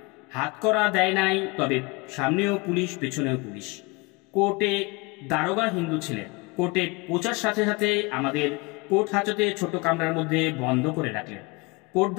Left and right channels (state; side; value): quieter; right; 26.5 dB